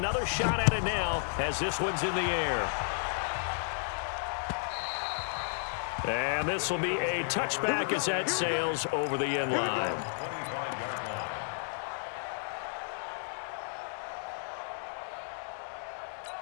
shot at it now as this one's in the air. And this will be a touchback as that sails over the end line.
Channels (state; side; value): silent; right; digital silence